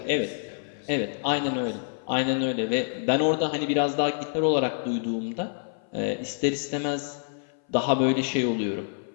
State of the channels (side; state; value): right; silent; 58 dB below the other